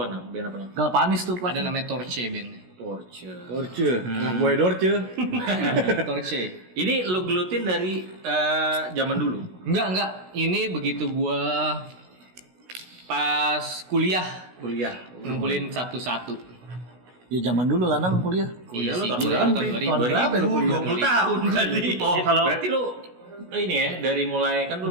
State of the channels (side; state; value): left; late; 16 ms